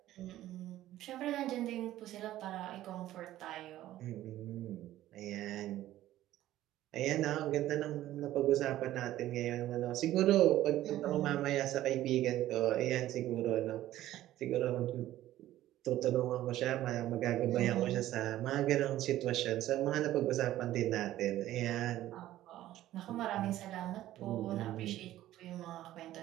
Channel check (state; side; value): quieter; left; 14.2 dB